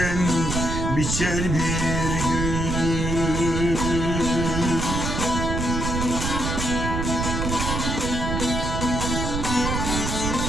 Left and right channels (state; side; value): noise; right; rumble, 1 dB below the sound